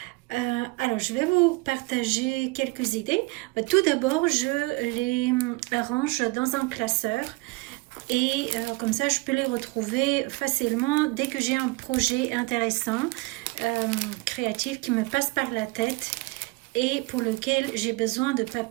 Alors je vais vous partager quelques idées. Tout d'abord, je les arrange dans un classeur. Et comme ça, je peux les retrouver facilement dès que j'ai un projet intéressant, créatif qui me passe par la tête et pour lequel j'ai besoin de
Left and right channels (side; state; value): left; quieter; 24.1 dB